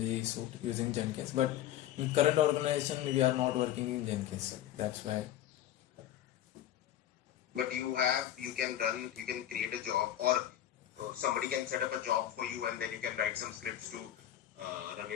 suite using Jenkins. But in current organization, we are not working in Jenkins. That's why. But you can create a job, or somebody can set up a job for you, and then you can write some scripts to run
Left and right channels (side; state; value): right; quieter; 11.9 dB